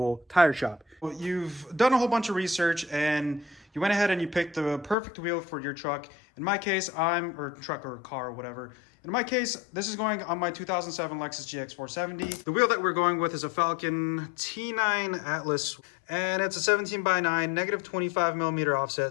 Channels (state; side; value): drops out; right; at 5.0 s